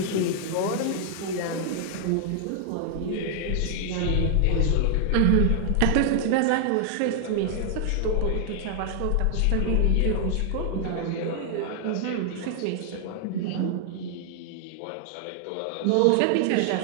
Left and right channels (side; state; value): both; different; correlation 0.00